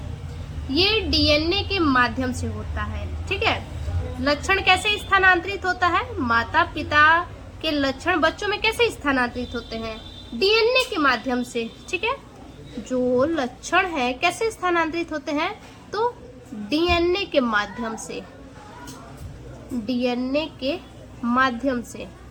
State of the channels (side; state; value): both; identical; correlation 1.00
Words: ये डीएनए के माध्यम से होता है, ठीक है। लक्षण कैसे स्थानांतरित होता है, माता पिता के लक्षण बच्चों में कैसे स्थानांतरित होते हैं, डीएनए के माध्यम से, ठीक है। जो लक्षण है कैसे स्थानांतरित होते हैं, तो डीएनए के माध्यम से, डीएनए के माध्यम से,